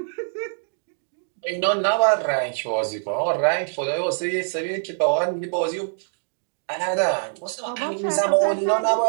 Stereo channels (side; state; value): left; silent; digital silence